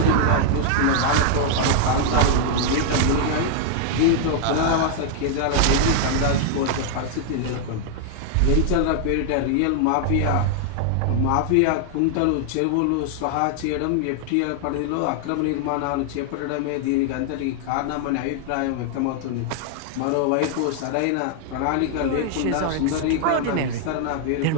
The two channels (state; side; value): different; both; correlation 0.00